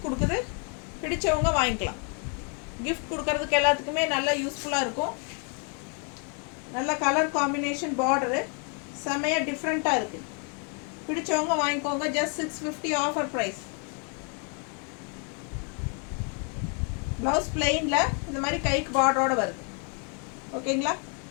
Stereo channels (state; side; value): quieter; right; 39.0 dB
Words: கொடுக்குது. பிடிச்சவங்க வாங்கிக்கலாம். கிஃப்ட் கொடுக்கறதுக்கு எல்லாத்துக்குமே நல்லா யூஸ்ஃபுல்லாக இருக்கும். நல்ல கலர் காம்பினேஷன், பார்டரு செம்மையாக டிஃப்ரெண்ட்டாக இருக்குது. பிடிச்சவங்க வாங்கிக்கோங்க. Just 650 offer price. ப்ளவுஸ் பிளெயினில் இந்த மாதிரி கைக்கு பார்டரோட வருது. ஓகேங்களா?